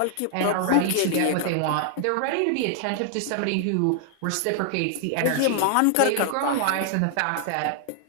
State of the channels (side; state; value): both; different; correlation 0.00